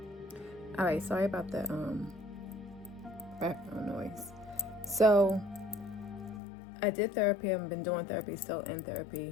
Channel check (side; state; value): right; drops out; at 6.4 s